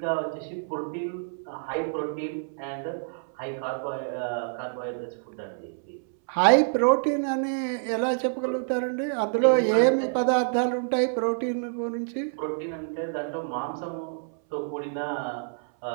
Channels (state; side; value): silent; left; 60 dB below the other